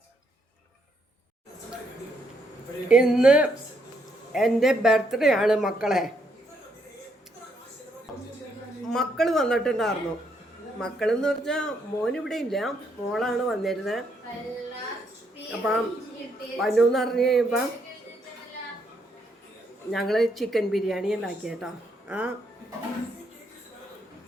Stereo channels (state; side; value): normal; both; correlation 0.74